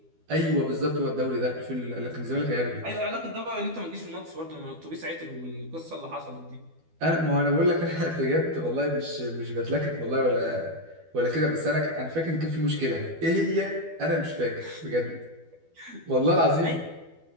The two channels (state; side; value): late; left; 12 ms